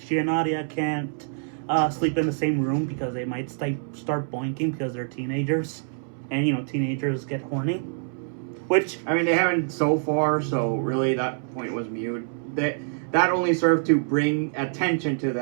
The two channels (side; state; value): left; silent; 61 dB below the other